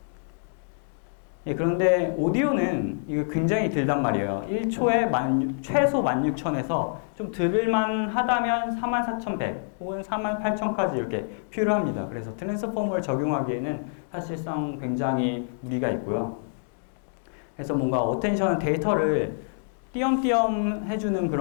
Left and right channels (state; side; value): silent; right; digital silence